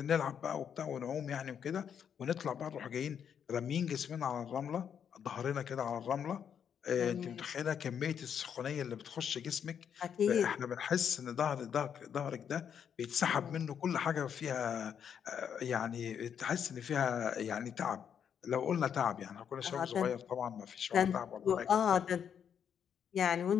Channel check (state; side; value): quieter; right; 8.1 dB